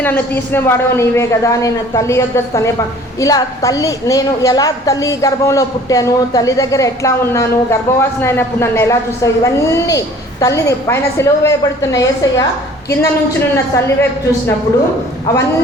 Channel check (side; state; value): both; normal; correlation 0.51